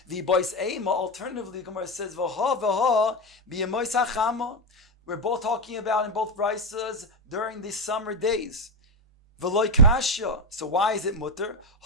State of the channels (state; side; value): normal; both; correlation 0.11